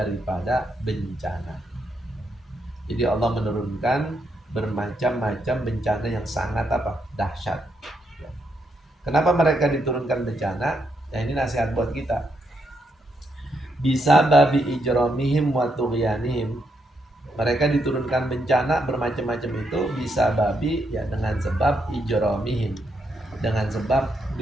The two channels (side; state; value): both; normal; correlation 0.79